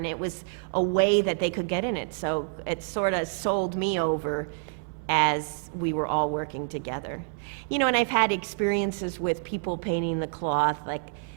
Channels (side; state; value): left; silent; digital silence